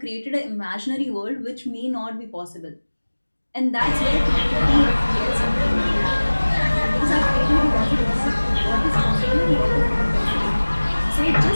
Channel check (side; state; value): both; inverted; correlation -1.00